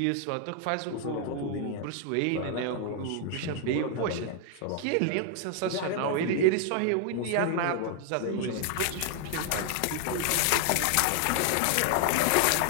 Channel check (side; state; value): both; different; correlation 0.00